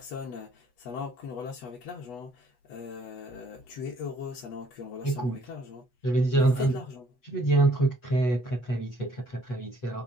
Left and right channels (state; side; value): late; right; 8.1 ms